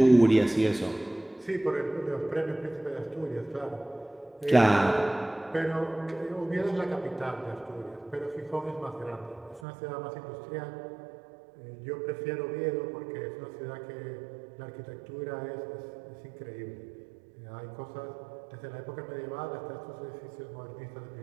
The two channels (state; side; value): drops out; left; at 9.6 s